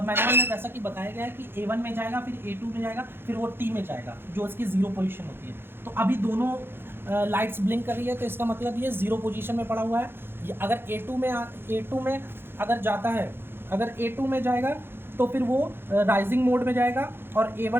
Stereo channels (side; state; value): left; late; 0.11 ms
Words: में जैसा कि बताया गया है कि A1 में जाएगा, फिर A2 में जाएगा, फिर वो T में जाएगा, जो इसकी 0 पोजीशन होती है। तो अभी दोनों लाइट्स ब्लिंक कर रही है, तो इसका मतलब ये 0 पोजीशन में पड़ा हुआ है। अगर A2 में अगर जाता है, अगर A2 में जाएगा तो फिर वो राइजिंग मोड में जाएगा और